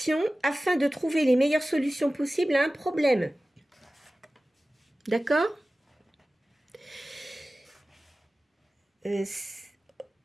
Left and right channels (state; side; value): normal; both; correlation 0.96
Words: afin de trouver les meilleures solutions possibles à un problème. D'accord